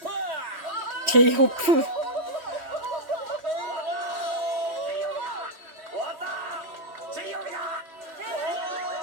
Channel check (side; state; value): left; late; 3.2 ms